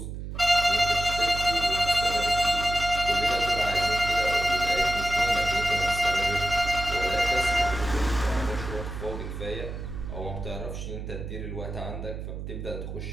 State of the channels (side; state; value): right; noise; hum, 7 dB below the sound